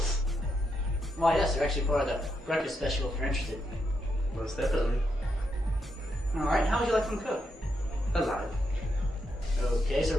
Why, yes, they're actually part of the breakfast special if you're interested. Most definitely. Alright, how would you like them cooked? Alive. Okay,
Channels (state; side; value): normal; both; correlation 0.81